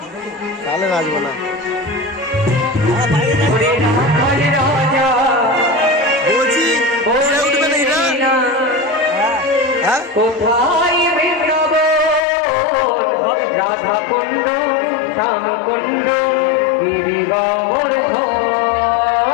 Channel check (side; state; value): right; drops out; at 12.2 s